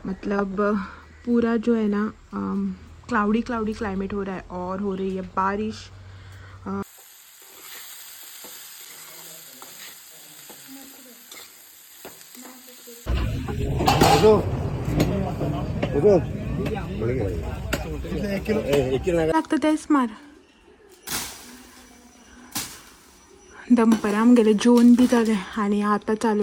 मतलब पूरा जो है ना क्लाउडी क्लाउडी क्लाइमेट हो रहा है और हो रही है बारिश। लागतं तेच मार दंपराम गेले, जेवण भी झाले आणि आता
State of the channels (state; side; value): identical; both; correlation 1.00